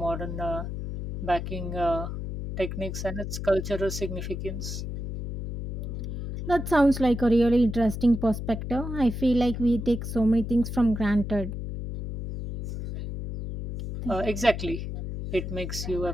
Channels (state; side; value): noise; left; hum, 6 dB below the sound